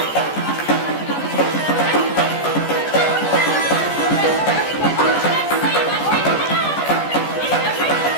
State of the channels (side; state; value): right; late; 14 ms